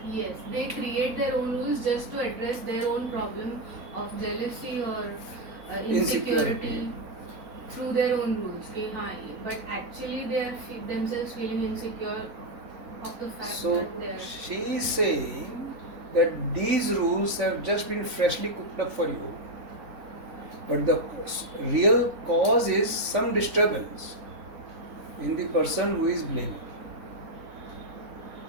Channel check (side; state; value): left; late; 4.1 ms